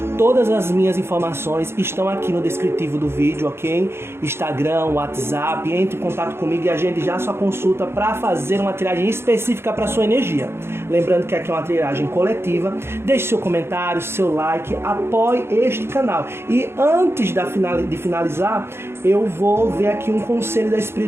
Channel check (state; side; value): late; left; 0.12 ms